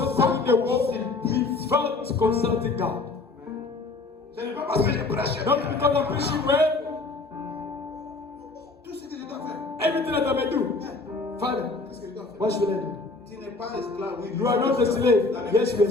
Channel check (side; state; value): right; quieter; 3.5 dB